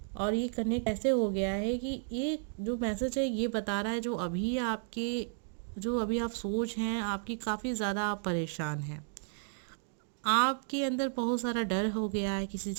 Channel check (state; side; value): silent; left; digital silence